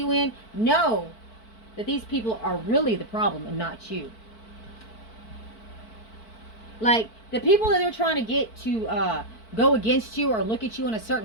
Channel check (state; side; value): late; right; 4.5 ms